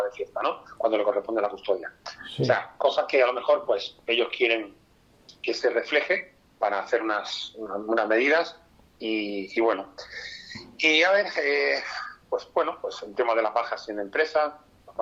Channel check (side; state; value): both; identical; correlation 1.00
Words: de fiesta, ¿no? Cuando le corresponde la custodia. Sí. O sea, cosas que a lo mejor, pues, ellos quieren que se refleje para hacer unas medidas y bueno. Y a ver, pues bueno, pues el tema de las bajas en empresas, las